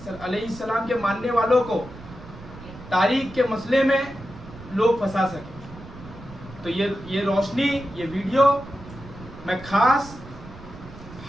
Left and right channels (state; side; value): noise; right; rumble, 16 dB below the sound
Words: अलैहिस्सलाम के मानने वालों को तारीख के मसले में लोग फंसा सके। तो ये रोशनी, ये वीडियो मैं खास